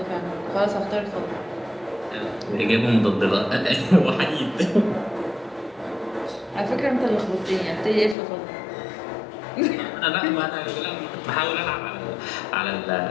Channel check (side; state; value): right; drops out; at 8.2 s